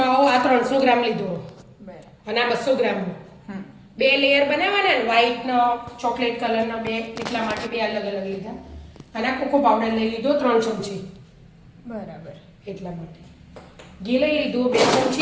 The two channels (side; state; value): both; identical; correlation 1.00